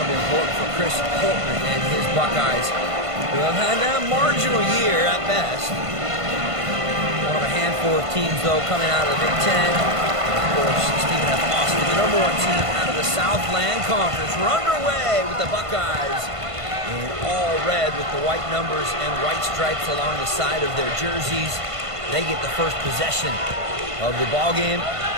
be important for Chris Holtman and his Buckeyes, who have had a marginal year at best. One of a handful of teams, though, coming out of the Big Ten. And of course, Stephen F. Austin, the number 1 team out of the Southland Conference. We're underway with the Buckeyes in all red with the white numbers and white stripes along the side of their jerseys. They get the first possession of the ball game.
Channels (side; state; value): left; late; 1.5 ms